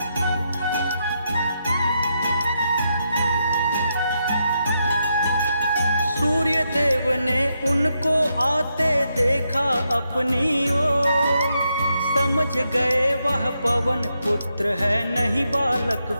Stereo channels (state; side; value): inverted; both; correlation -0.82